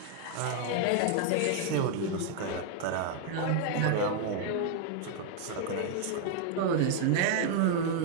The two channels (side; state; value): both; different; correlation 0.00